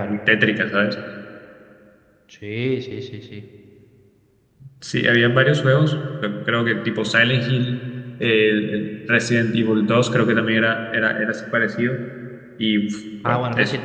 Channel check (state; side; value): identical; both; correlation 1.00